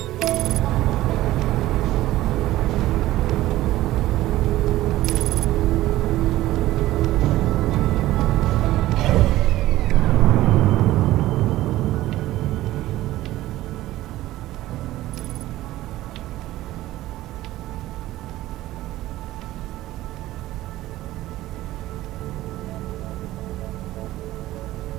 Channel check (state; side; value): quieter; left; 15.8 dB